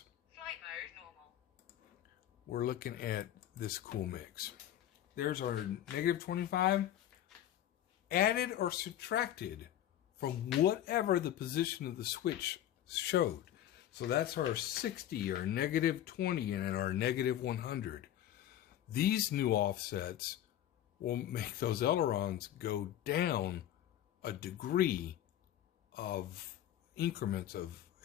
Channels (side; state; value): right; quieter; 11.9 dB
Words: Flight mode normal. we're looking at this cool mix. There's our negative 25, added or subtracted from whatever the position of the switch showed. So that's our 60, our negative 20, and our negative 100. These new offsets will make those ailerons go down a degree of increments of,